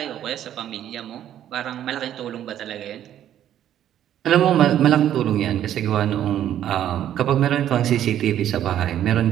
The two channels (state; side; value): quieter; left; 11.1 dB